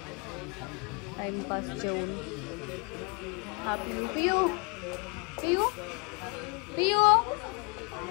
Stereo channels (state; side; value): quieter; right; 32.8 dB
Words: टाइमपास जेवून. हा पियू पियू पियू पियू